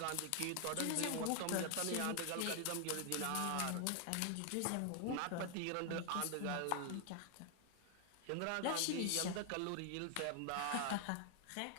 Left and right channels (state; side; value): different; both; correlation 0.00